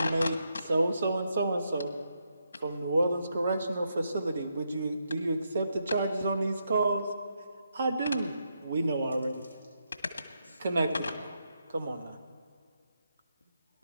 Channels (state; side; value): inverted; both; correlation -0.81